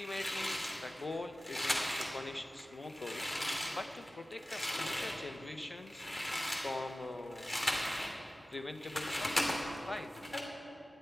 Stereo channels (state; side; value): normal; both; correlation 0.97